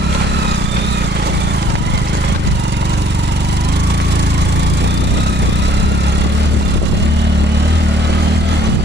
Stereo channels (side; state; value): both; normal; correlation 0.60